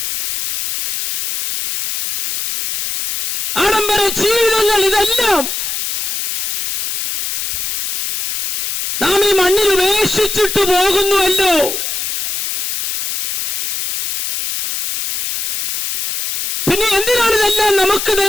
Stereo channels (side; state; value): left; noise; hiss, 3 dB below the sound